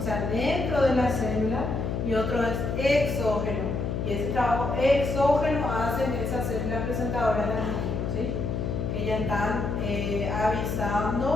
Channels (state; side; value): noise; left; hum, 1 dB below the sound